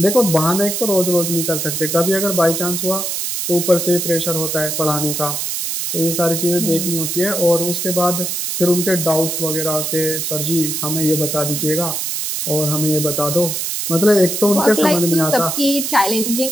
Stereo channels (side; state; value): right; noise; hiss, 2 dB below the sound